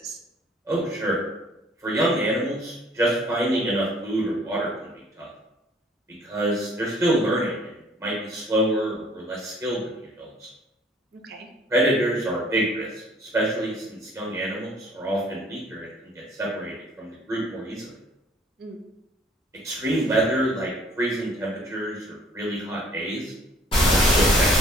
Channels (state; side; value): normal; both; correlation 0.57